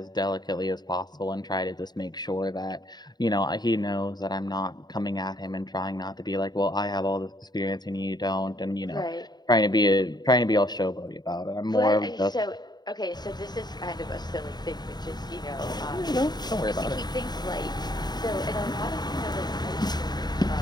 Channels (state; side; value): late; right; 0.20 ms